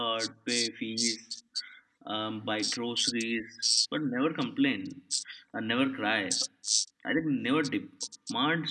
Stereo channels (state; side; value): identical; both; correlation 1.00